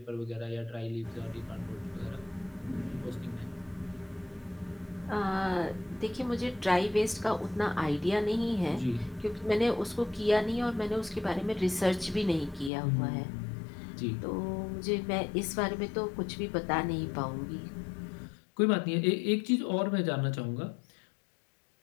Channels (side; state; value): right; drops out; at 12.7 s